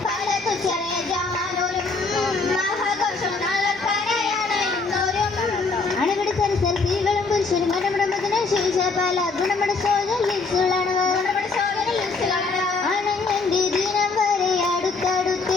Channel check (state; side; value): quieter; right; 4.0 dB